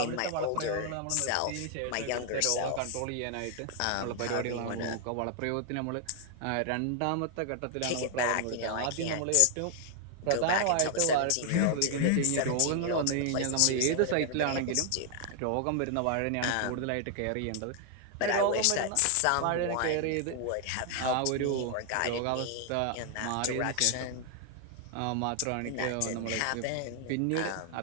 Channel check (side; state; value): both; different; correlation 0.00